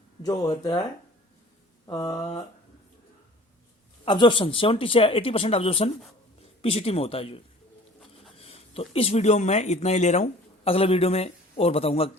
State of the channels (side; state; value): both; normal; correlation 0.48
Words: जो होता है अब्जॉर्प्शन 70 से 80% अब्जॉर्प्शन पीसीटी में होता है जो। तो इस वीडियो में मैं इतना ही ले रहा हूँ, अगले वीडियो में और बताऊंगा